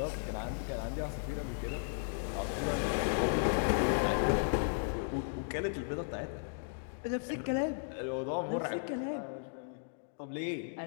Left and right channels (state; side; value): silent; right; digital silence